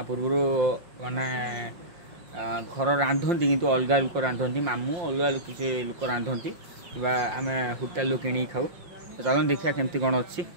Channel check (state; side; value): late; left; 5.7 ms